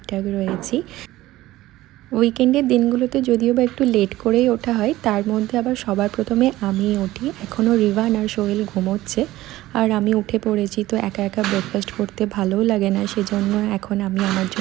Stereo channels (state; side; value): quieter; left; 16.4 dB